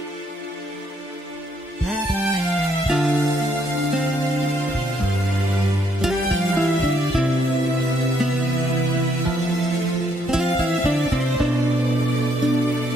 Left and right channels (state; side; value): normal; both; correlation 0.72